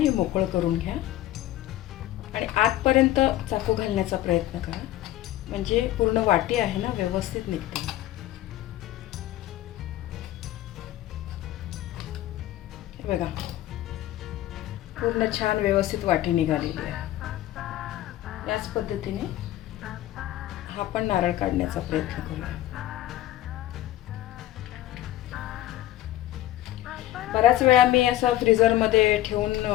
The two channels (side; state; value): right; quieter; 14.3 dB